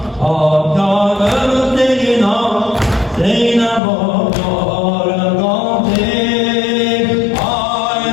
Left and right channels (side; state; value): right; drops out; at 3.8 s